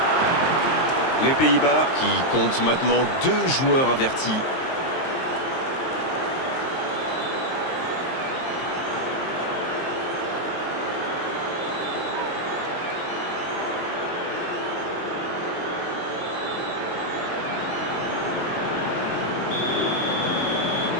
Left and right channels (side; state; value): right; late; 23 ms